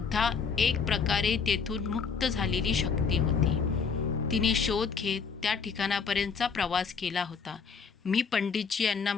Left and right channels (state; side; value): quieter; right; 5.8 dB